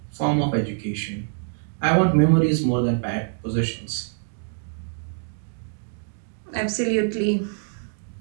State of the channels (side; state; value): left; silent; digital silence